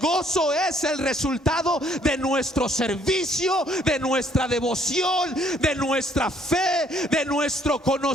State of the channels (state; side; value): normal; both; correlation 0.64